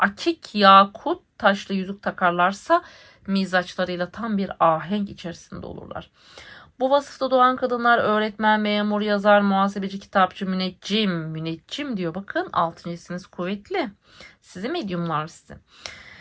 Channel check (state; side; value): identical; both; correlation 1.00